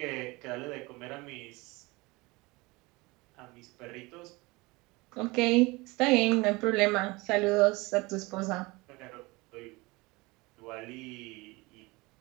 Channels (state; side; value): quieter; left; 23.7 dB